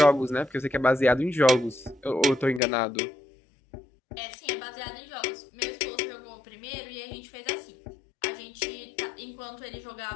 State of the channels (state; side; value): drops out; right; at 2.6 s